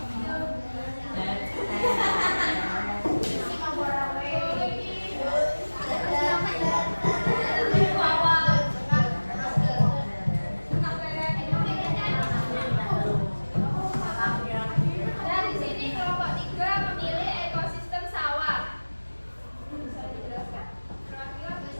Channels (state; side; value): inverted; both; correlation -1.00